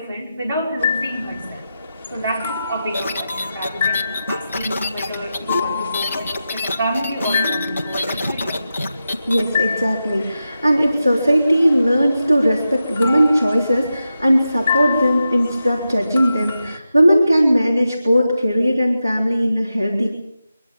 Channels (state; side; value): inverted; both; correlation -0.90